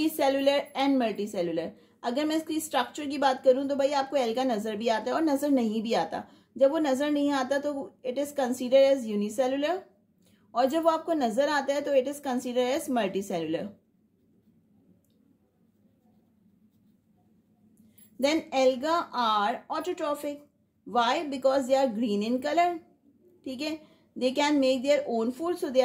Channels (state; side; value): identical; both; correlation 1.00